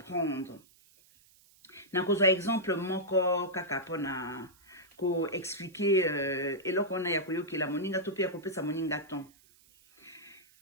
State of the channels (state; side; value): noise; right; hiss, 29 dB below the sound